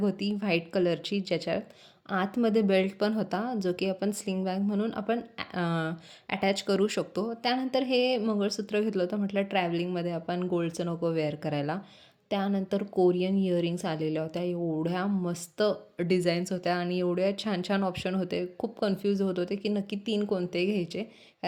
व्हाईट कलरची, ज्याच्यात आतमध्ये बेल्ट पण होता, जो की आपण स्लिंग बॅग म्हणून आपण अटॅच करू शकतो. त्यानंतर हे मंगळसूत्र घेतलं होतं, म्हटलं ट्रॅव्हलिंगमध्ये आपण गोल्डचं नको वेअर करायला. त्यानंतर कोरियन इयरिंग्स आलेल्या होत्या, एवढ्या मस्त डिझाईन्स होत्या आणि एवढ्या छान छान ऑप्शन होते. खूप कन्फ्यूज होत होते की नक्की 3 कोणते घ्यायचे,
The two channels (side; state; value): both; identical; correlation 1.00